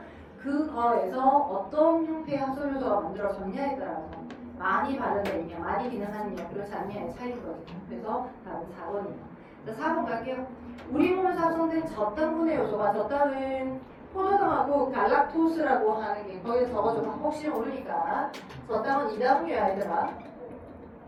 그거에서 어떤 형태의 합성요소가 만들어졌냐에 따라서 많이 발현되어 있냐, 많이 기능하느냐, 그렇지 않냐의 차이인 거죠. 그래서 다음 4번이에요. 자, 4번 갈게요. 우리 몸에서 합성된 저당분해 요소가, 저당은 포도당하고 갈락토스라고 하는 게 거기에 적어줘. 혹시 모르니까. 저당은 이당류야 얘들아.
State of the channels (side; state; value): both; identical; correlation 1.00